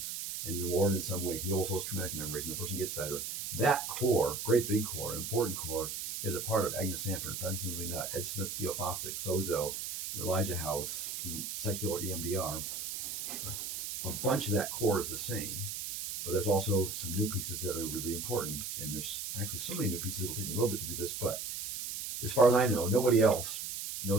And the Lord in some way heals those traumatic memories and the person gets better. That core, great big core, important core, is a part of Agnes Sanford, Francis McNutt, Ed Smith, Theo Fosdick, Sozo, Elijah House, secular EMDR. A bunch of that core is the same, but there's also some new pieces that are really important. And there's actually so many new pieces, it'll take me a little bit to do this, but as far as I know, nobody else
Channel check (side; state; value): right; noise; hiss, 5 dB below the sound